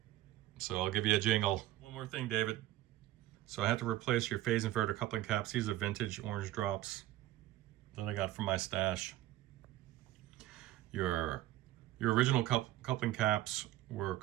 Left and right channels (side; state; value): left; quieter; 15.2 dB